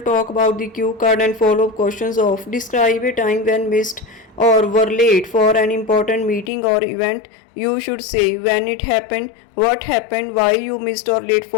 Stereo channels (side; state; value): right; drops out; at 6.5 s